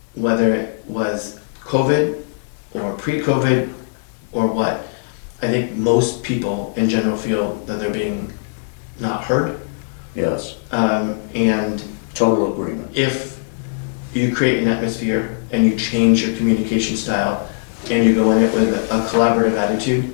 whether it was COVID or pre-COVID or what, I think most people in general feel that they're being not heard. Yes, And total agreement. if you create an atmosphere and you change your communication style and you go in it with a collaborative attitude,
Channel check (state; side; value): silent; right; digital silence